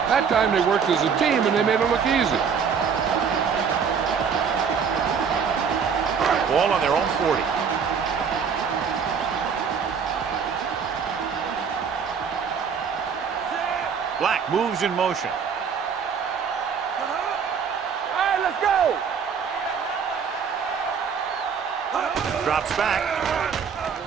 That time they worked as a team and they made it look easy. Ball on their own 40. Black moves in motion. All right, let's go. Drops back.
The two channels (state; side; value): quieter; left; 6.5 dB